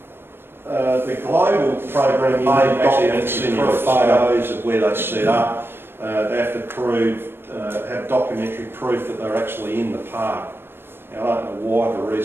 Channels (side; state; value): left; late; 0.10 ms